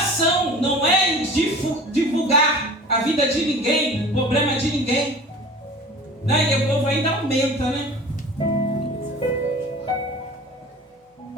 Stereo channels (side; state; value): both; normal; correlation 0.40